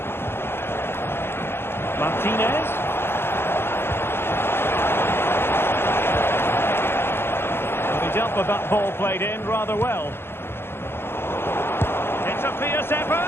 Martinez. Well, he dealt with that ball played in rather well. A fierce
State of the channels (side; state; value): right; late; 0.11 ms